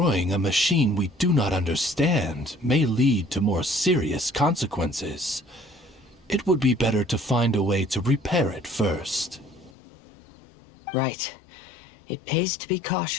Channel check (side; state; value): right; drops out; at 9.7 s